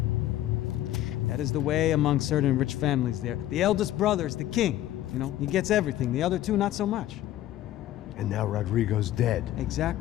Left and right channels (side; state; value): right; quieter; 13.6 dB